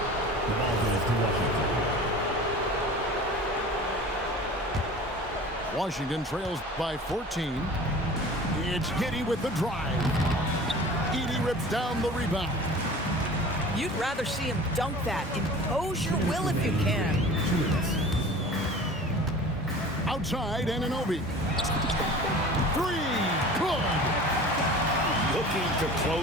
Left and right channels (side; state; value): both; normal; correlation 0.41